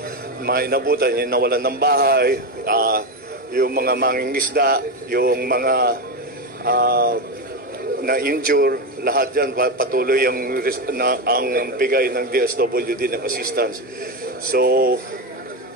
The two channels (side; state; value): both; normal; correlation 0.13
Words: inabutan, yung nawalan ng bahay, yung mga mangingisda, yung mga na-injure, lahat yan patuloy ang bigay ng DSWD ng assistance. So,